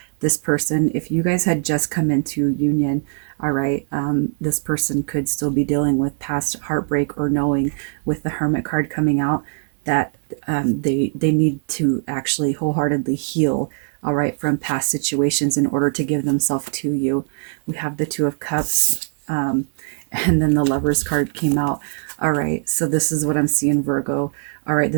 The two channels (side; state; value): left; silent; 65 dB below the other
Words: this person, if you guys had just come into union, all right, this person could still be dealing with past heartbreak, or knowing with the Hermit card coming out that they need to actually wholeheartedly heal, all right, from past situations in order to give themselves to you. We have the 2 of Cups, and then the Lovers card came out. All right, so this is what I'm seeing, Virgo. All right,